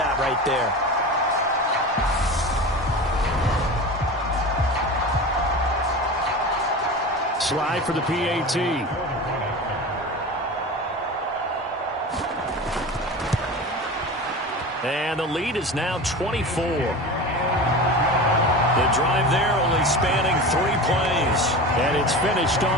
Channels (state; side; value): normal; both; correlation 0.30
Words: right there. Slide for the PAT. And the lead is now 24. The drive there only spanning 3 plays. And it's finished